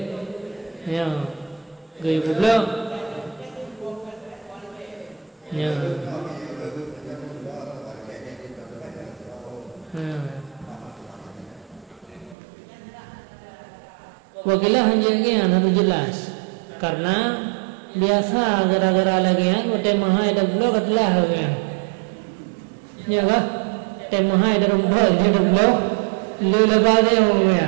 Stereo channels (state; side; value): drops out; left; at 12.4 s